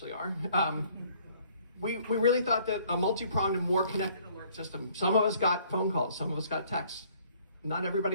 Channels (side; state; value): both; inverted; correlation -0.60